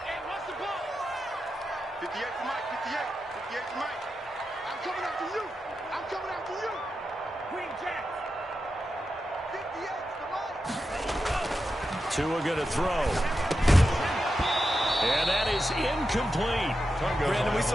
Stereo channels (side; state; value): both; normal; correlation 0.89